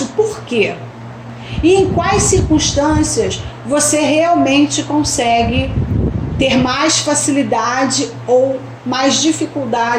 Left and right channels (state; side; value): identical; both; correlation 1.00